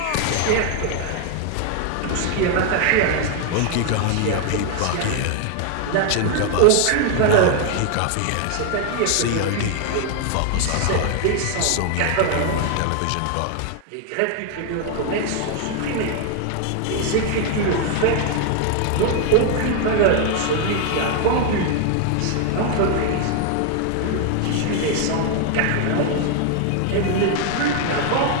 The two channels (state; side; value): different; both; correlation 0.01